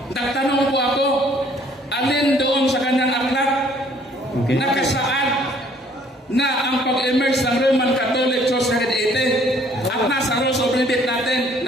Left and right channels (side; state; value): both; normal; correlation 0.60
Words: nagtanong po ako, alin doon sa kanyang aklat nakasaad na ang pag-emerge ng Roman Catholic Church 380 at nasa rules of debate natin